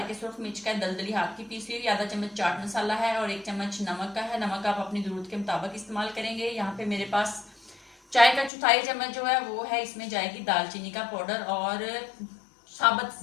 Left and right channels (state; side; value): drops out; right; at 8.5 s